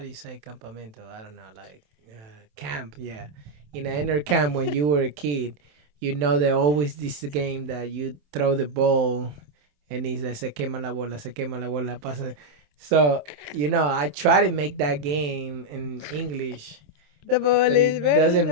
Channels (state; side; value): late; left; 27 ms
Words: you say campamento? I don't know, like camp, yeah. In an inner camp when you were a kid, there always this game that you throw the ball and it's like, se quema la bola, pasa. So, I try to make that game in English, The ball but is it burning. doesn't The